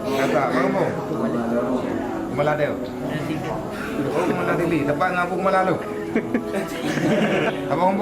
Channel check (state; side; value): identical; both; correlation 1.00